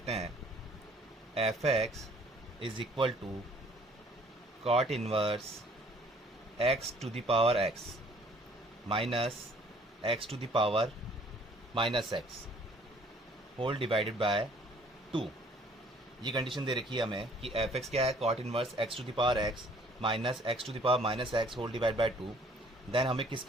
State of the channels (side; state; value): both; normal; correlation 0.58